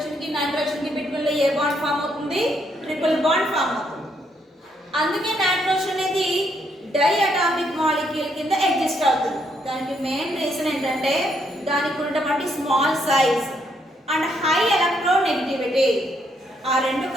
కి బిట్వీన్ లో ఏ బాండ్ ఫామ్ అవుతుంది? ట్రిపుల్ బాండ్ ఫామ్ అవుతుంది. అందుకే నైట్రోజన్ అనేది డై అటామిక్ మాలిక్యూల్ కింద ఎగ్జిస్ట్ అవుతుంది. దానికి మెయిన్ రీజన్ ఏంటంటే దానికి ఉన్నటువంటి small size and high electronegativity. ఆ రెండు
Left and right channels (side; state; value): both; normal; correlation 0.74